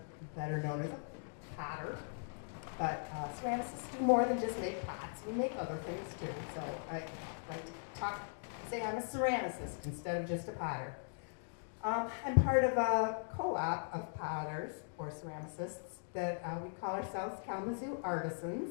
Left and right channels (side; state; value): right; silent; digital silence